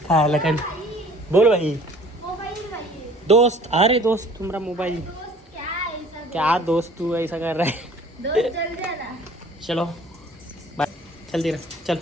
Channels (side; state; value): both; normal; correlation 0.51